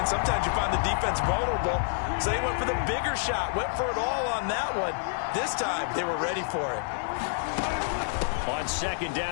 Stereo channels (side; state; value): right; silent; 56 dB below the other